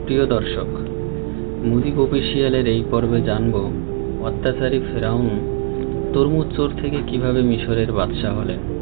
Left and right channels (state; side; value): silent; left; 66 dB below the other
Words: প্রিয় দর্শক, মুজিব অফিসিয়ালের এই পর্বে জানব অত্যাচারী ফেরাউন তরমুজ চোর থেকে কিভাবে মিশরের বাদশাহ হলেন।